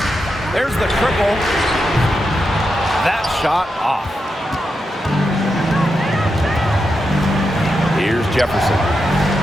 There's the triple. That shot off. Here's Jefferson.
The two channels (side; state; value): both; normal; correlation 0.86